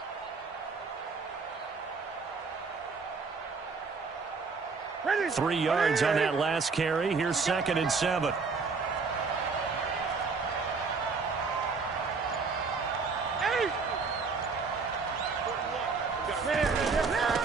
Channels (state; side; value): quieter; left; 4.7 dB